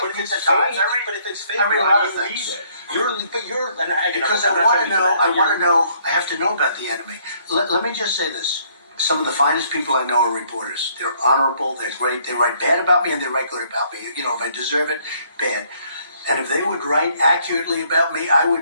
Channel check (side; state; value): both; inverted; correlation -0.65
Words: But if read it's the fake, Times. but if it's fake, I read why other do you things. read it? You're, and Because I want to know, I have to know about the enemy. Let me just say this. Some of the finest people I know are reporters. They're honorable, they're great, they write bad about me and they write good about me. You know, if I deserve it, bad. And if they would write accurately about me, I